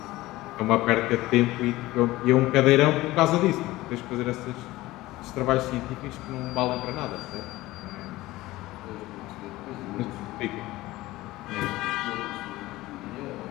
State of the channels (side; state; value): right; quieter; 18.1 dB